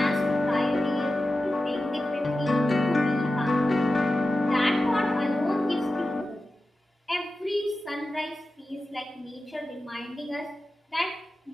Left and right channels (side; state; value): both; normal; correlation 0.93